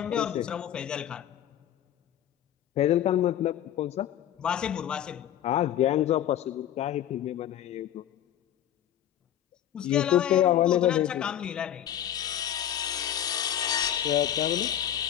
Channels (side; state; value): right; quieter; 11.0 dB